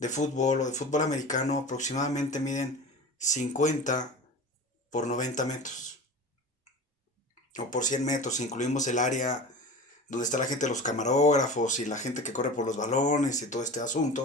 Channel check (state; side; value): normal; both; correlation 0.34